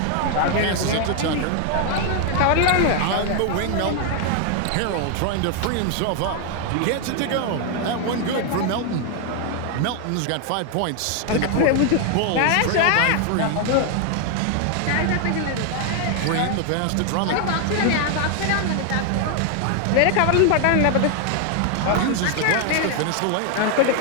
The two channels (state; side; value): different; both; correlation 0.00